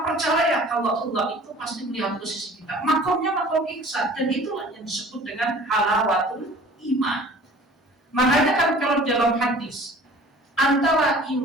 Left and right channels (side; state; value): both; normal; correlation 0.47